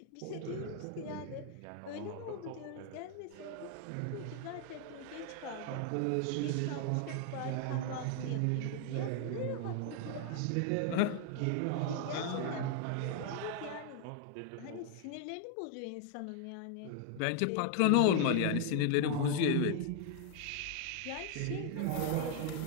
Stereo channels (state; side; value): different; both; correlation 0.00